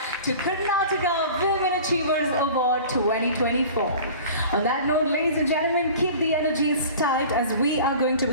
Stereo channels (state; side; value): inverted; both; correlation -0.41